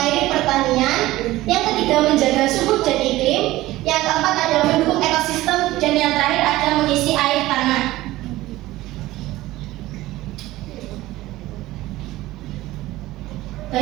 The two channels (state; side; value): quieter; left; 17.1 dB